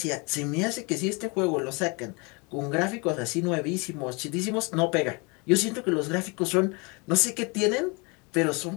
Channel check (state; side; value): quieter; right; 30.0 dB